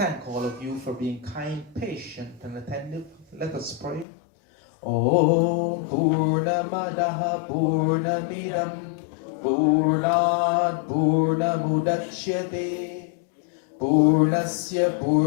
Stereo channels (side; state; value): right; drops out; at 4.0 s